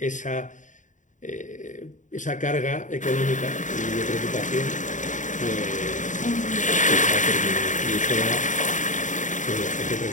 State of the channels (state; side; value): late; right; 0.36 ms